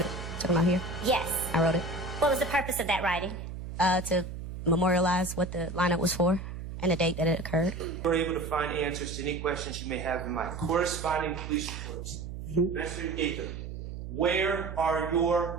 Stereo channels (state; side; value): noise; right; hum, 8 dB below the sound